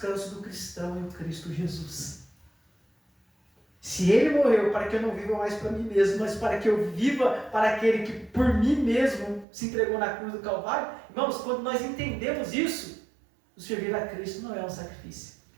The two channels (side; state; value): left; drops out; at 9.5 s